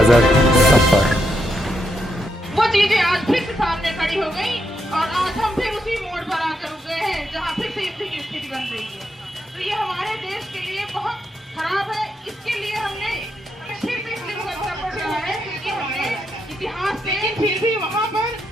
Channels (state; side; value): normal; both; correlation 0.81